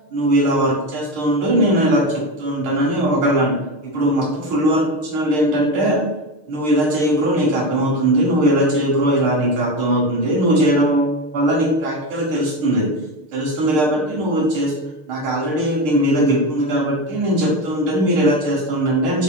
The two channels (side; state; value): left; late; 6.6 ms